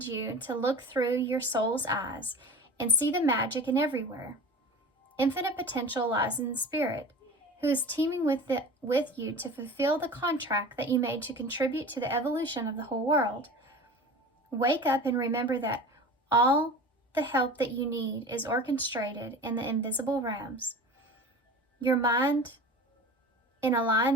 you to look through your soul's eyes and see the magic in everywhere. Infinite potential lies in the spirit, who is teaming with you to fulfill the contract that you made to contribute to the evolution of the whole world. Wake up and remember that all the help that you need is orchestrated in the invisible realms. Your mind, in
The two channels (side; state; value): both; normal; correlation 0.36